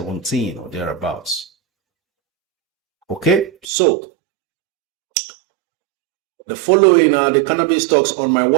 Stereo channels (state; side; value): drops out; left; at 3.7 s